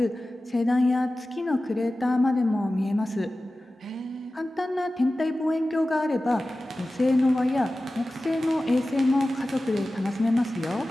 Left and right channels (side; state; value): both; normal; correlation 0.96